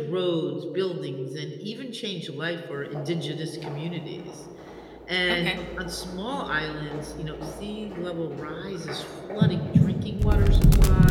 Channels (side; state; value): both; identical; correlation 1.00